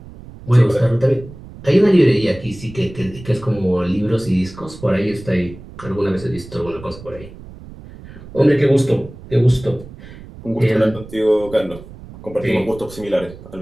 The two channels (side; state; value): right; noise; rumble, 17 dB below the sound